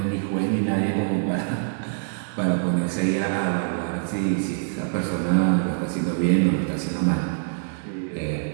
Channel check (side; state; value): left; silent; digital silence